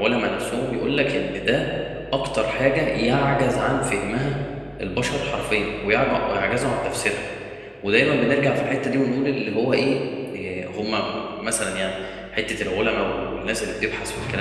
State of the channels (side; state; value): both; identical; correlation 1.00